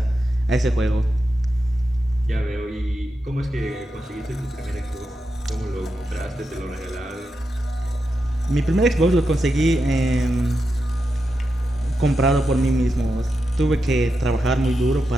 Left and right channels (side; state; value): both; normal; correlation 0.87